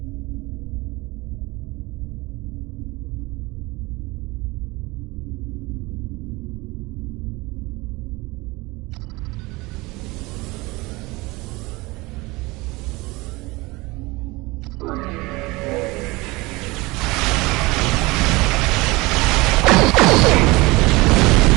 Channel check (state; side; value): quieter; left; 22.8 dB